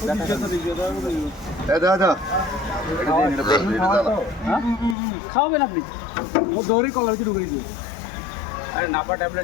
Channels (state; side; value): drops out; right; at 5.0 s